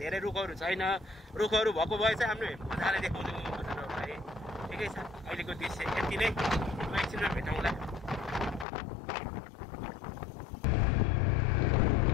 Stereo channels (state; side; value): drops out; right; at 8.7 s